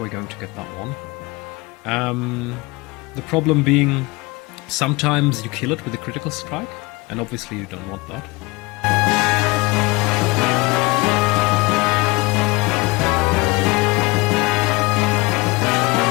going to get that one. The problem being, sometimes you kill it with a critical strike, and obviously you don't want that.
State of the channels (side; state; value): right; quieter; 24.3 dB